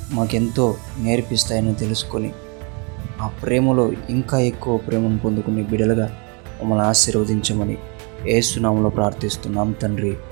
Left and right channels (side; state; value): left; quieter; 33.7 dB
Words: మాకెంతో నేర్పిస్తాయని తెలుసుకొని ఆ ప్రేమలో ఇంకా ఎక్కువ ప్రేమను పొందుకునే బిడ్డలుగా మమ్మల్ని ఆశీర్వదించమని యేసు నామములో ప్రార్థిస్తున్నాం తండ్రి.